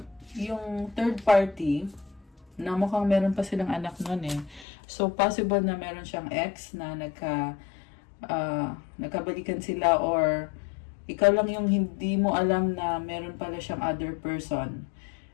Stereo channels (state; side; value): drops out; right; at 4.7 s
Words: yung third party, na mukhang meron pa silang anak nun eh. So, possible na meron siyang ex na nagkabalikan sila or ikaw lang yung hindi mo alam na meron pala siyang other person